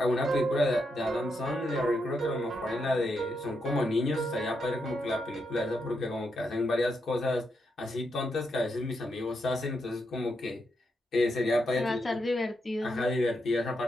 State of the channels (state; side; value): normal; both; correlation 0.82